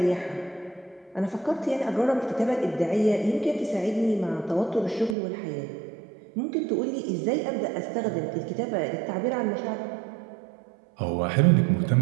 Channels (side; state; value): left; drops out; at 5.2 s